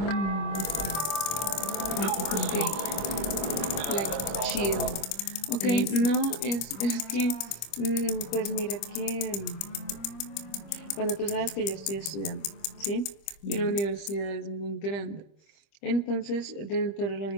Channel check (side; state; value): right; late; 25 ms